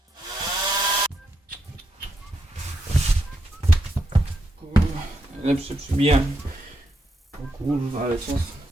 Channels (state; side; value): normal; both; correlation 0.81